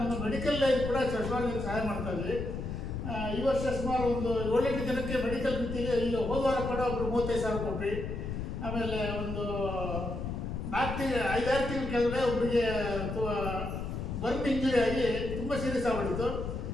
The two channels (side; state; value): left; noise; rumble, 5 dB below the sound